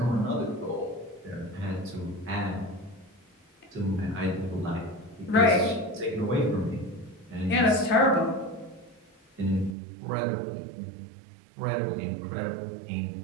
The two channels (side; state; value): left; drops out; at 9.8 s